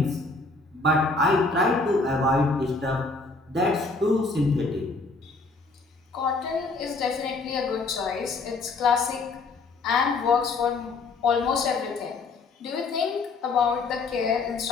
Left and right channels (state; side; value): quieter; right; 3.7 dB